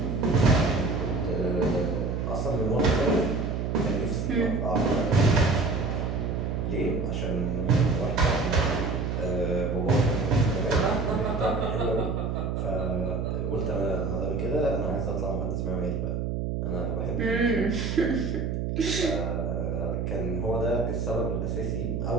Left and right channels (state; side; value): noise; right; hum, 1 dB below the sound